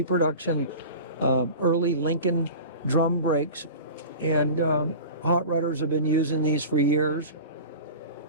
early Lincoln drum brakes. And hot rodders have been using these for years.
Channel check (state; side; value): inverted; both; correlation -0.35